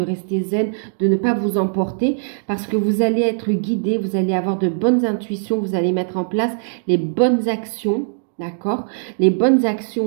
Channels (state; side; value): silent; left; digital silence